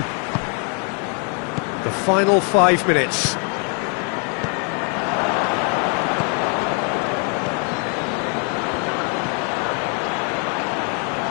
The final 5 minutes.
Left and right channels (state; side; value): quieter; right; 38.8 dB